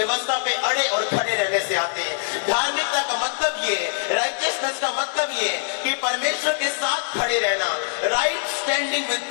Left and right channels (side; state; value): right; silent; 60 dB below the other